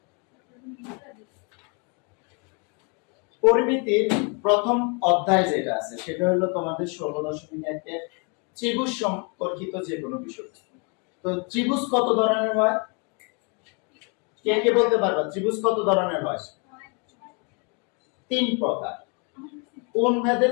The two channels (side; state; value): right; quieter; 34.5 dB